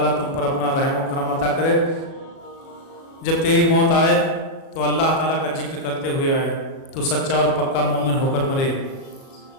تم پر اپنا رحم و کرم عطا کرے، جب تیری موت آئے تو اللہ تعالیٰ کا ذکر کرتے ہوئے آئے، تو سچا اور پکا مومن ہو کر مرے۔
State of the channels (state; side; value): late; right; 37 ms